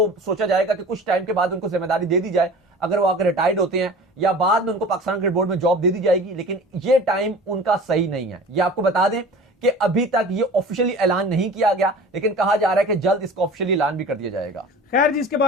सोचा जाएगा कि कुछ टाइम के बाद उनको जिम्मेदारी दे दी जाए, अगर वो आकर रिटायर्ड होते हैं, या बाद में उनको पाकिस्तान क्रिकेट बोर्ड में जॉब दे दी जाएगी। लेकिन ये टाइम उनका सही नहीं है। ये आपको बता दें कि अभी तक ये ऑफिशियली ऐलान नहीं किया गया, लेकिन कहा जा रहा है कि जल्द इसका ऑफिशियली ऐलान भी कर दिया जाएगा। खैर जी, इसके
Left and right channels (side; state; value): both; normal; correlation 0.40